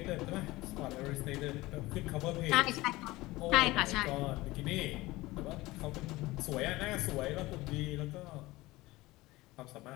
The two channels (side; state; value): right; quieter; 19.7 dB